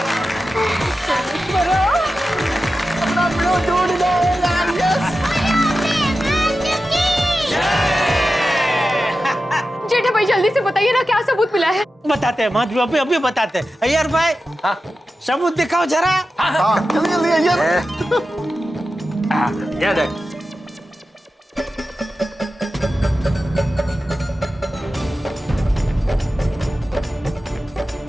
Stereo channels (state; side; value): normal; both; correlation 0.92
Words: जेठा भाई जल्दी से बताइए ना क्या सबूत मिला है। बताते हैं माधवी, अभी बताते हैं। अय्यर भाई सबूत दिखाओ जरा। ये देख।